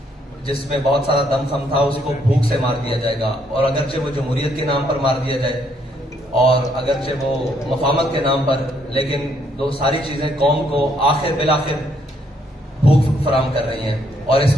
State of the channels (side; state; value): both; normal; correlation 0.71